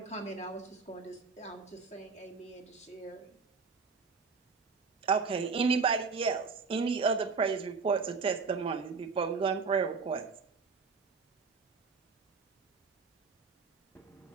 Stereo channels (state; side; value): quieter; left; 4.9 dB